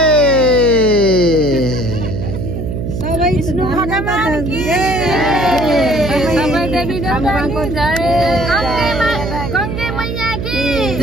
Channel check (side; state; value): right; noise; hum, 4 dB below the sound